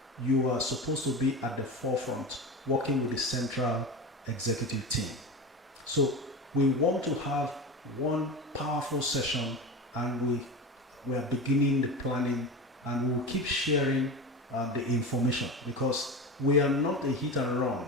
you are supposed to be at the forefront, working with the central executive team. So we want to have one powerful session, and we are beginning the planning, and we will keep sharing the information, because we are not a hit and run.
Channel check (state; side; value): normal; both; correlation 0.26